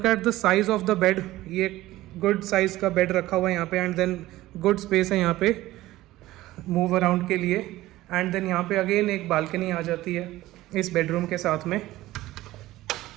at the size of the bed. ये गुड साइज का bed रखा हुआ है यहाँ पे। एंड देन गुड स्पेस है यहाँ पे मूव अराउंड के लिए। एंड देन यहाँ पे अगेन एक बालकनी आ जाती है इस बेडरूम के साथ में।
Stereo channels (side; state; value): left; quieter; 16.6 dB